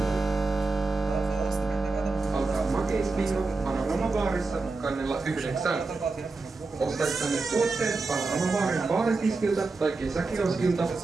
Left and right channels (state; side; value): quieter; left; 3.8 dB